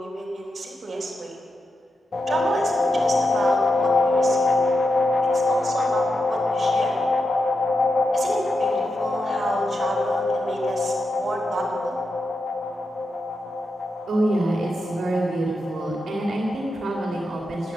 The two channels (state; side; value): normal; both; correlation 0.87